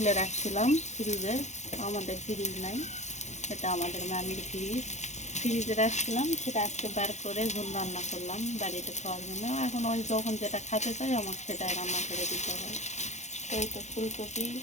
রাখছিলাম ফ্রিজে। আমাদের ফ্রিজ নাই, এটা আমাদের মামির ফ্রিজে রাখছিলাম। সেটা আজকে বার করে ঝোল রান্না করলাম বাড়িতে খাওয়ার জন্য। এখন ওই যখন যেটা খেতে চাই আমাকে সেটাই রান্না করে দিতে হয়। তো এই তো ফুলকপি,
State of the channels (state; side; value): late; right; 0.33 ms